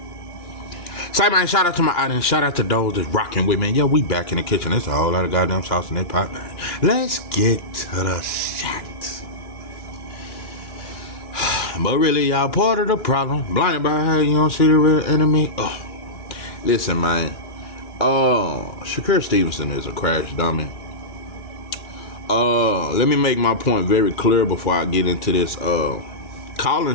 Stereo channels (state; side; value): late; right; 3.0 ms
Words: Say, man, shout out to my audience. Shout out to those that's rocking with me. Yo, we back in the kitchen. There's a whole lot of goddamn sauce in that pot, man. Let's get to the shot. But really, y'all part of the problem. Blinded by how you don't see the real enemy. Listen, man. Shakur Stevenson is a crash dummy. Let me make my point very clear before I get into this.